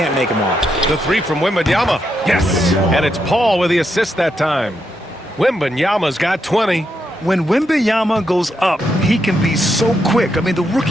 make him off. The three from Wembenyama. Yes. And it's Paul with the assist that time. Wembenyama's got 20. When Wembenyama goes up, he can be so quick. I mean, the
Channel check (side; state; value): both; normal; correlation 0.81